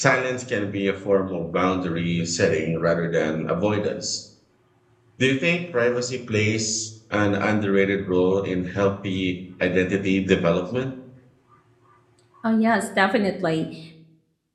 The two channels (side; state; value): both; identical; correlation 1.00